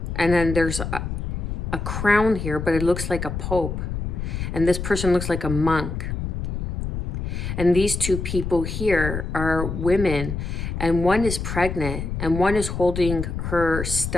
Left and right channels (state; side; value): noise; left; rumble, 4 dB below the sound